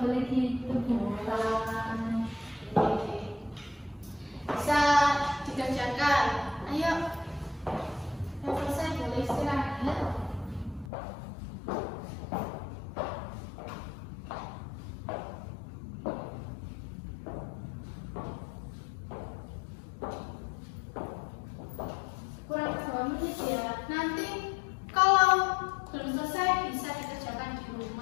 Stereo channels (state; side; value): drops out; right; at 10.9 s